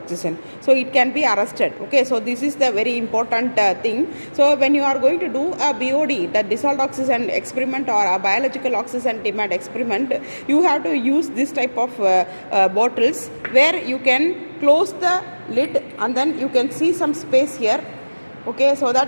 So it can be arrested, okay. So this is the very important thing. So when you are going to do a BOD, the dissolved oxygen experiment or a biological oxygen demand experiment, you have to use this type of bottles where you can close the lid and then you can see some space here, okay, so that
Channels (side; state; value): both; inverted; correlation -1.00